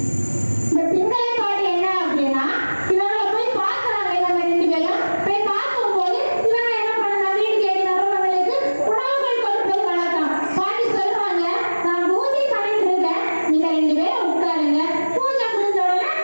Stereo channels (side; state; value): both; inverted; correlation -1.00